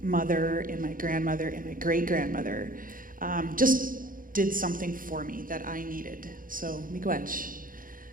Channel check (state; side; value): late; left; 0.40 ms